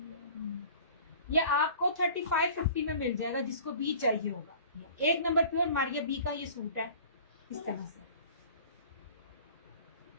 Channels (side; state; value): both; inverted; correlation -0.45